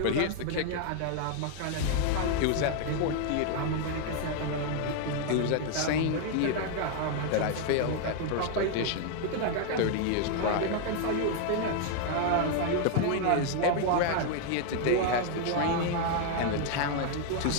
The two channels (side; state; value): both; different; correlation 0.00